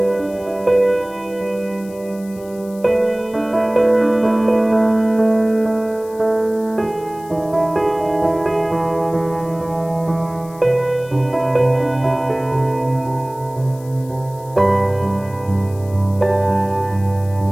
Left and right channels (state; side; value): noise; left; hiss, 23 dB below the sound